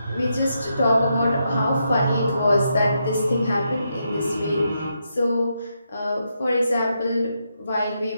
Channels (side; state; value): both; inverted; correlation -0.82